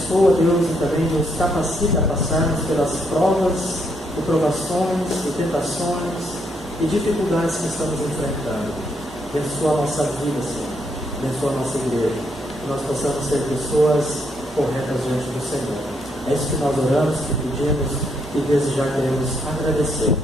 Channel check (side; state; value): both; normal; correlation 0.75